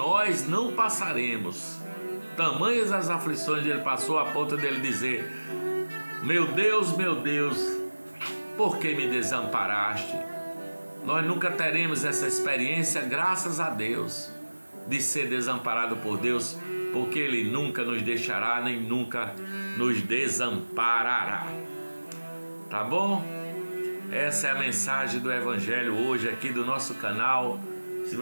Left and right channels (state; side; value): inverted; both; correlation -1.00